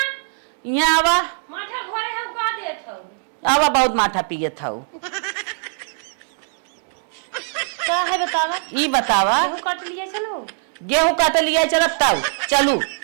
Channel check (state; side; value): silent; left; 64 dB below the other